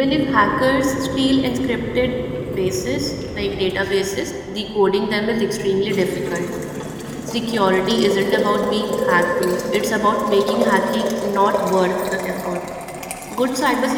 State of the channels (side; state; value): both; identical; correlation 1.00